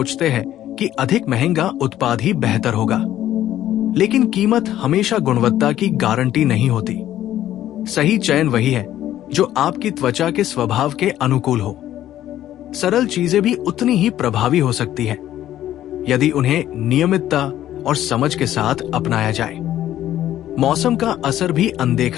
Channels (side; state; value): right; quieter; 12.6 dB